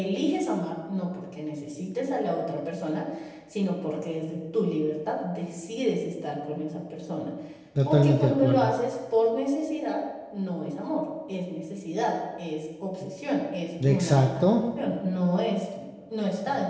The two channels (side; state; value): both; identical; correlation 1.00